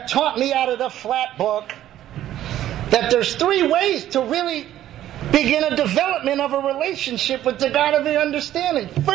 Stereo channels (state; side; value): quieter; left; 12.6 dB